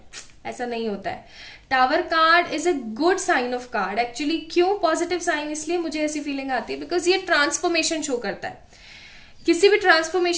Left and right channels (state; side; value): identical; both; correlation 1.00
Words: ऐसा नहीं होता है। Tower card is a good sign of card actually. क्यों पॉजिटिव साइन? इसलिए मुझे ऐसी फीलिंग आती है बिकॉज ये ट्रांसफॉर्मेशन शो करता है। किसी भी